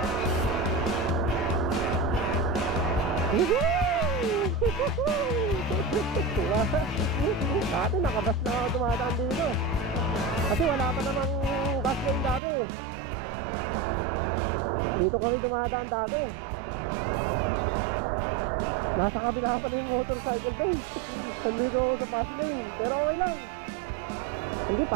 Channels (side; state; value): left; drops out; at 12.4 s